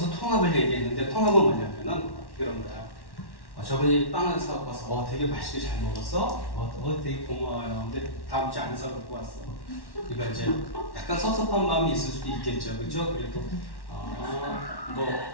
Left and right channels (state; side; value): late; right; 1.1 ms